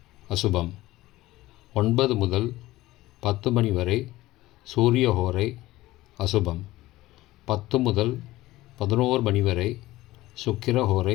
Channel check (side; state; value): right; quieter; 17.3 dB